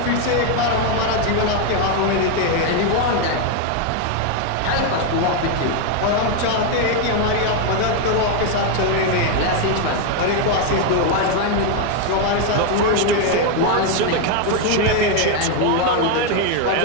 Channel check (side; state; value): both; different; correlation 0.01